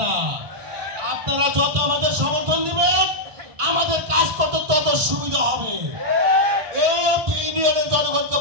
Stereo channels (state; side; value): late; left; 1.4 ms